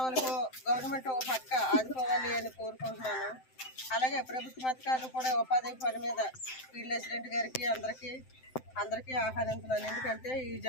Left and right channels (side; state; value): right; late; 7.8 ms